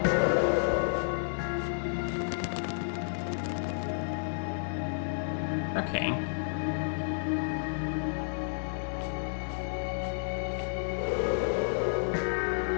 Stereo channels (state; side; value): silent; right; 57 dB below the other